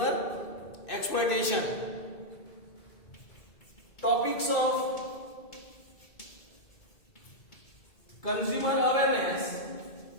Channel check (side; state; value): right; late; 2.5 ms